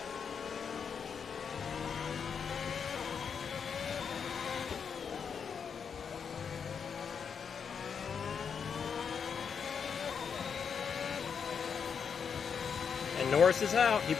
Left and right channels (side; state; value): right; quieter; 6.6 dB